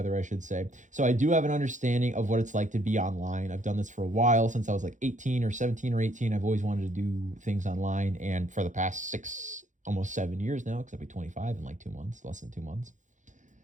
I should say. So I do have an understanding of what it's like to be online. I've done this for a while, since I was like 18 or 17 or 18. I've always wanted to do things online, and for the past almost 7 years now, because I'll be 25 in like 2 months, less than 2 months.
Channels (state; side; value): late; left; 0.36 ms